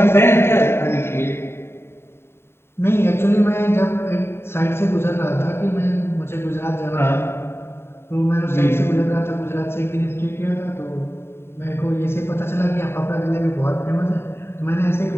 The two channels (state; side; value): late; right; 0.12 ms